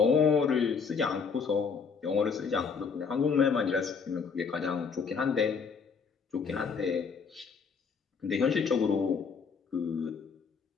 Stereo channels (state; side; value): quieter; right; 5.7 dB